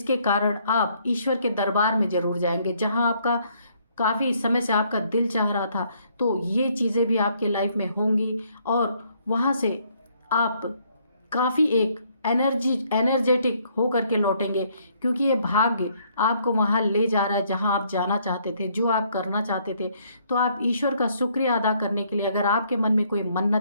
कारण आप ईश्वर के दरबार में ज़रूर जाएंगे, जहाँ आपका काफ़ी समय से आपका दिल चाह रहा था। तो ये चीज़ें भी आपके लाइफ में होंगी, और वहाँ से आप काफ़ी एक एनर्जेटिक हो करके लौटेंगे, क्योंकि ये भाग्य आपको वहाँ ले जा रहा है जहाँ आप जाना चाहते थे, जो आप करना चाहते थे। तो आप ईश्वर का शुक्रिया अदा करने के लिए, अगर आपके मन में कोई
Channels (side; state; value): both; inverted; correlation -0.68